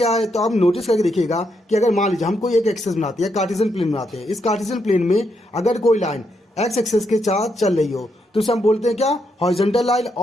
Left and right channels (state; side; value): normal; both; correlation 0.79